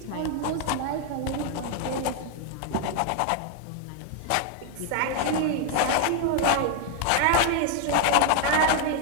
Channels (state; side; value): different; both; correlation 0.00